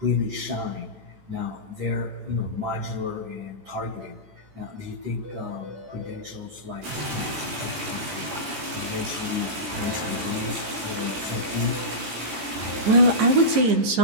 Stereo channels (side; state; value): left; late; 14 ms